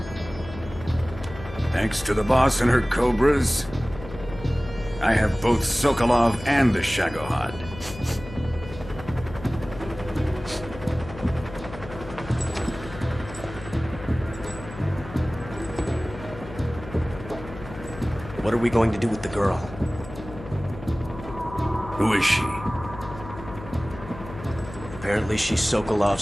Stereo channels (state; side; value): noise; left; hum, 14 dB below the sound